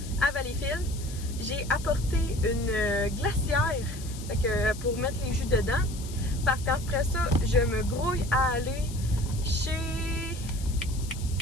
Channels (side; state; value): left; noise; hiss, 15 dB below the sound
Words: à Valleyfield. J'ai apporté une glacière, fait que, pour mettre les jus dedans, parce qu'après ça, je me grouille à aller chez